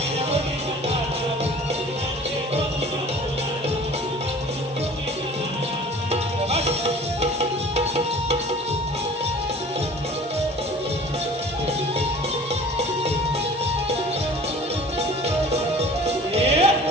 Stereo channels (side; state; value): both; normal; correlation 0.45